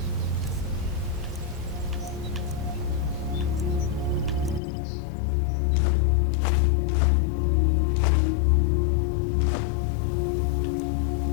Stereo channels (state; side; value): drops out; right; at 4.6 s